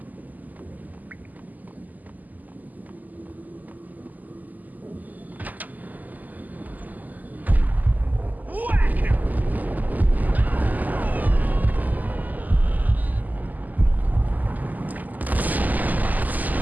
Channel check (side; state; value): left; late; 0.082 ms